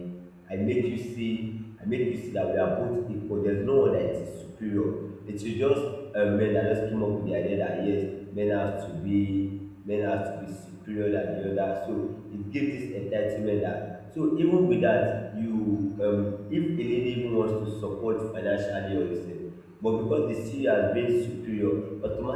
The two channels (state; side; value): identical; both; correlation 1.00